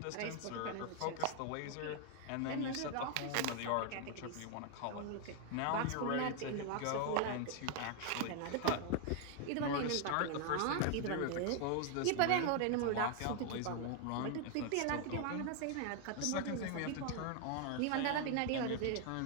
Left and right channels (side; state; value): both; different; correlation 0.00